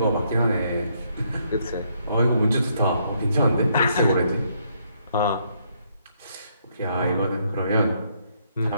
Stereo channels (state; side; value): inverted; both; correlation -0.72